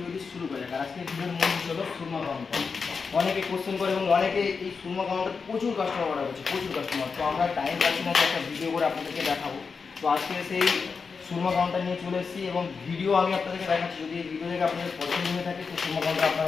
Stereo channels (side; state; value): right; quieter; 5.2 dB